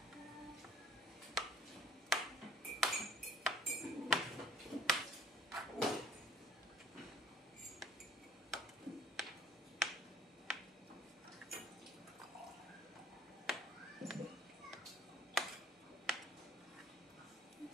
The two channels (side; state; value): both; normal; correlation 0.56